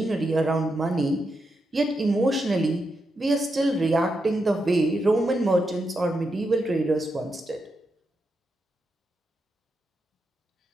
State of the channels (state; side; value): normal; both; correlation 0.85